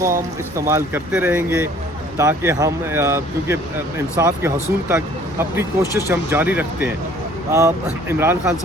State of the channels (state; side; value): normal; both; correlation 0.55